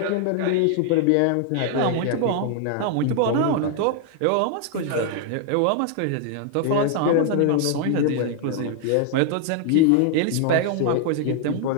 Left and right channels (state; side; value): different; both; correlation 0.00